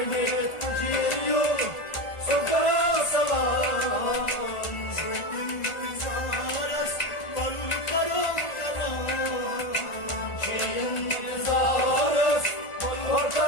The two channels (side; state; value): right; late; 1.4 ms